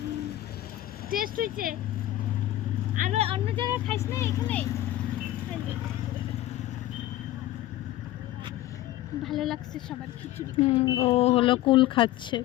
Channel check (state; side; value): quieter; right; 14.8 dB